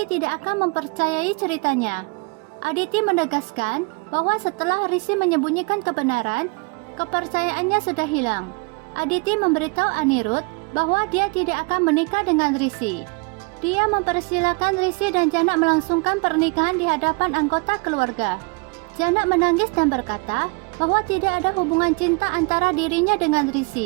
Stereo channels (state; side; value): quieter; left; 28.6 dB